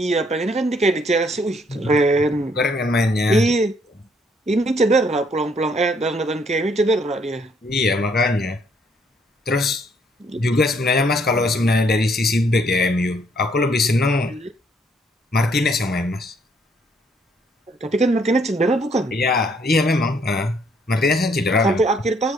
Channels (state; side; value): normal; both; correlation 0.67